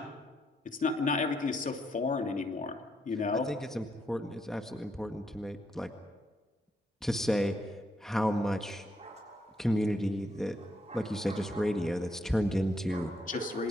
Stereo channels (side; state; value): both; normal; correlation 0.77